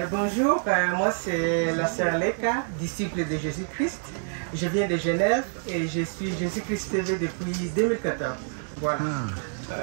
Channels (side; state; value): left; silent; 60 dB below the other